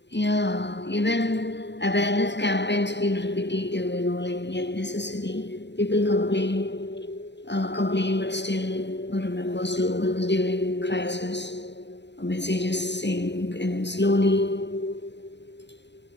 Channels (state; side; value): late; right; 0.51 ms